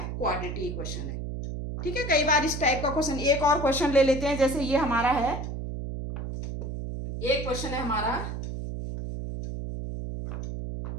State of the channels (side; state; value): right; noise; hum, 5 dB below the sound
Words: क्वाड्रेटिक इक्वेशन है, ठीक है। कई बार इस टाइप का क्वेश्चन, एक और क्वेश्चन ले लेते हैं, जैसे ये हमारा है, एक क्वेश्चन है हमारा,